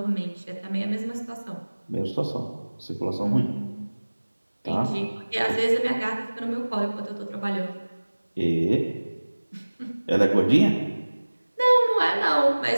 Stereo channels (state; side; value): inverted; both; correlation -1.00